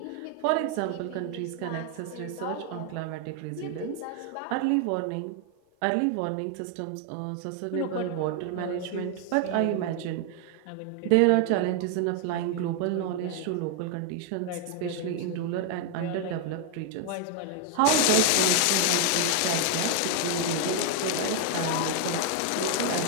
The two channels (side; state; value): both; different; correlation 0.01